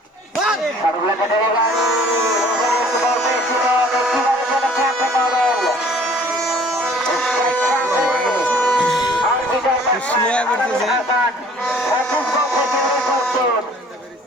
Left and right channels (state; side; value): normal; both; correlation 0.53